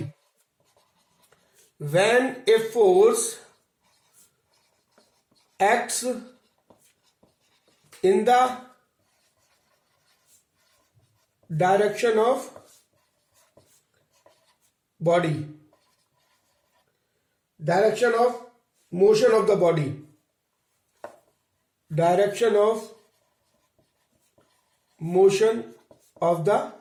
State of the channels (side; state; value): both; identical; correlation 1.00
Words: When a force acts in the direction of body, direction of motion of the body, direction of motion of the